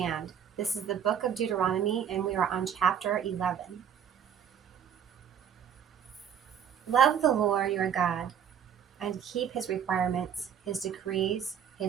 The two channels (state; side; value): quieter; left; 8.5 dB